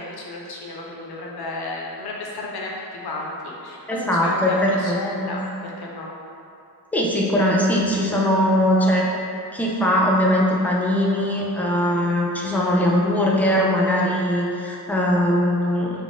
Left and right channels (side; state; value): both; normal; correlation 0.47